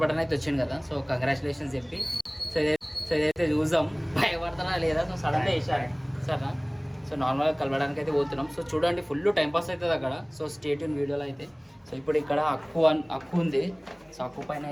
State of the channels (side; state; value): both; identical; correlation 1.00